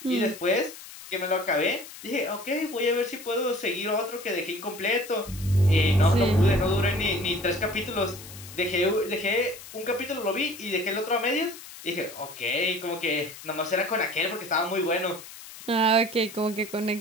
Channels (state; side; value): noise; left; hiss, 15 dB below the sound